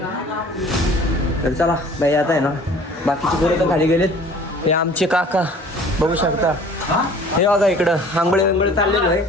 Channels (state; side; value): normal; both; correlation 0.49